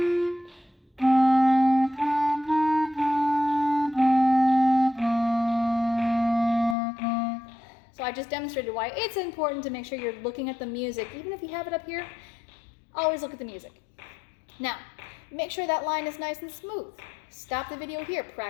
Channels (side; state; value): right; drops out; at 6.8 s